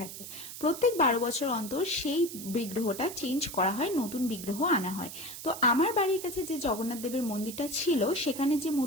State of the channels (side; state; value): right; noise; hiss, 11 dB below the sound